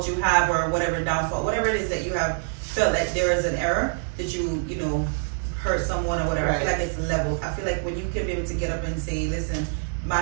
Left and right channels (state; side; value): silent; left; digital silence